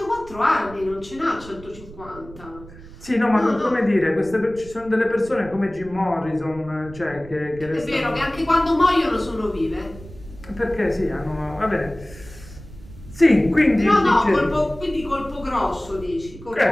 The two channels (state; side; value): noise; right; rumble, 18 dB below the sound